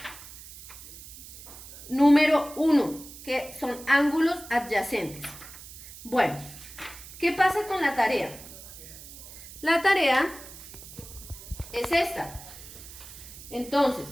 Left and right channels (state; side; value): noise; right; hiss, 15 dB below the sound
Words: número 1, que son ángulos adyacentes. Bueno, ¿qué pasa con la tarea? La tarea es esta. Entonces,